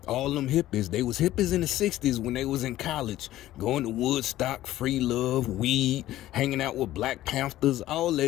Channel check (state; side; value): quieter; right; 14.5 dB